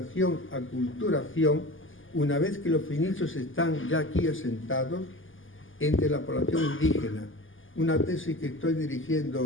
aculturación, una vez que los fenicios están ya aquí asentados, entre la población indígena. Una tesis que estoy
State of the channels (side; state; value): right; late; 0.58 ms